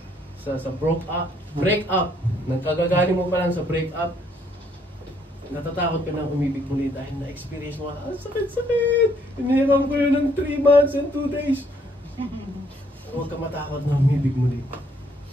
break up, nang kagagaling mo pa lang sa break up, natatakot ka ng umibig muli dahil na-experience mo, sakit-sakit, inihiram ko yun ng 3 months and 2 days. Huwag ka matakot na umibig muli.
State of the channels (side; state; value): both; normal; correlation 0.67